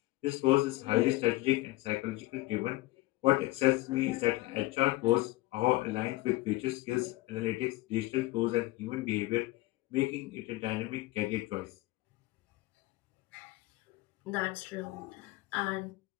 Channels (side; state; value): right; quieter; 19.0 dB